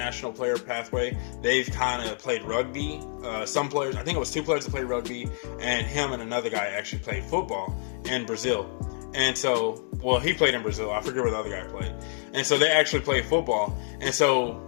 Player Pathway, they've kind of played rugby. Some players, I think it was 2 players that played rugby, and him and another guy actually played football in Brazil. And so, well, he played in Brazil. I forget where the other guy played. And so they actually played football. And so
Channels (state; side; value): silent; right; 60 dB below the other